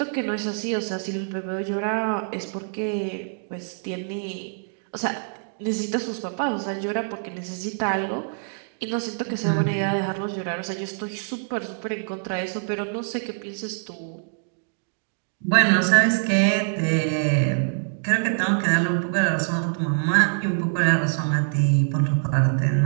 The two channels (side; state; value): left; silent; digital silence